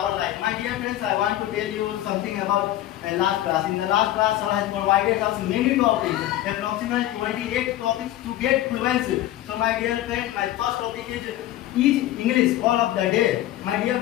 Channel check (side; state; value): right; quieter; 14.1 dB